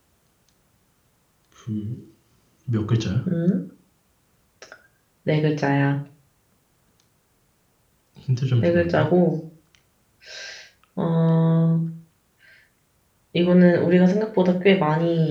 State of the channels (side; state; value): both; identical; correlation 1.00